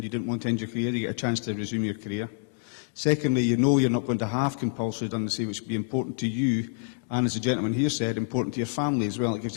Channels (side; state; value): right; silent; digital silence